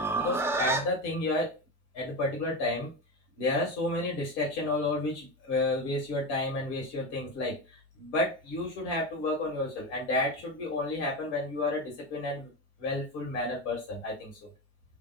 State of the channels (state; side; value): normal; both; correlation 0.19